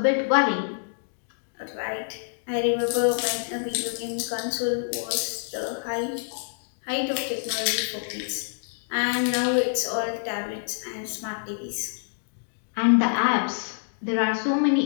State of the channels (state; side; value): silent; right; digital silence